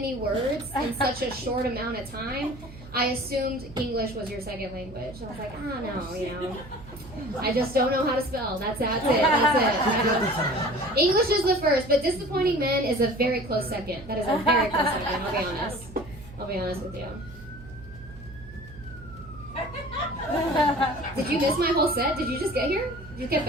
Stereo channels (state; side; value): noise; right; hum, 17 dB below the sound